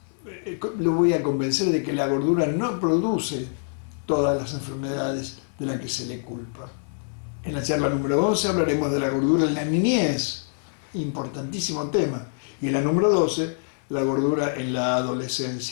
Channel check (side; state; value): right; silent; 57 dB below the other